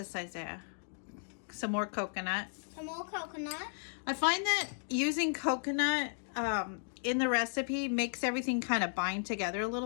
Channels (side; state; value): right; silent; digital silence